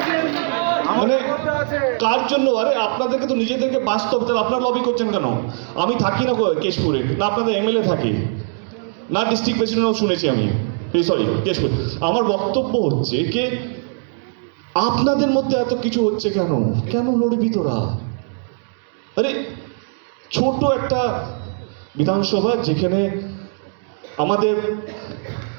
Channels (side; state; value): left; silent; 65 dB below the other